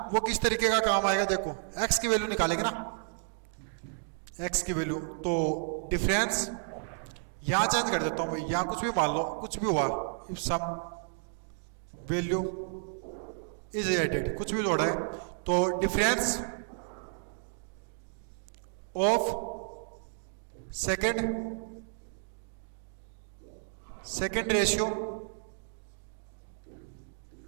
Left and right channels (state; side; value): silent; left; digital silence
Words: वो किस तरीके का काम आएगा, देखो x की वैल्यू निकालेंगे ना, x की वैल्यू, तो डिफरेंस यहां चेंज कर देता हूं भाई, यहां कुछ भी मान लो, कुछ भी हुआ, if some value is added, कुछ भी जोड़ा है, तो difference of second ratio